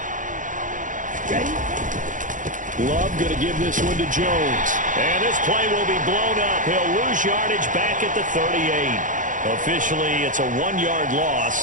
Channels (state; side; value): late; left; 0.38 ms